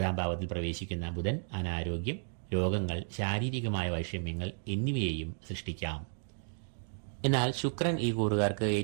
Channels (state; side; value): silent; left; 56 dB below the other